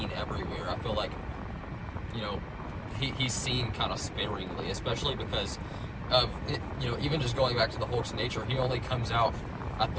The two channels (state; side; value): identical; both; correlation 1.00